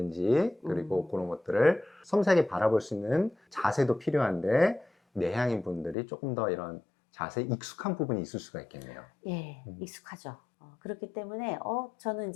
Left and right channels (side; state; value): right; drops out; at 6.0 s